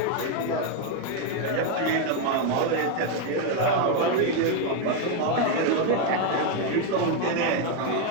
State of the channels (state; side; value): different; both; correlation 0.01